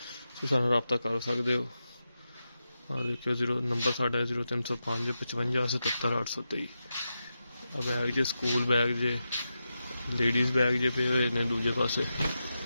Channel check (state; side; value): inverted; both; correlation -0.90